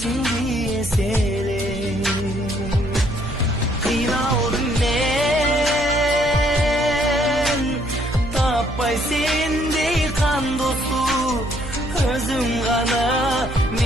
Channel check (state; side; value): noise; right; hum, 9 dB below the sound